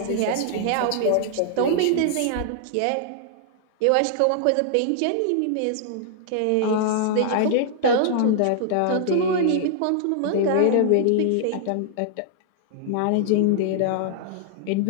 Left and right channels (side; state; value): both; different; correlation -0.01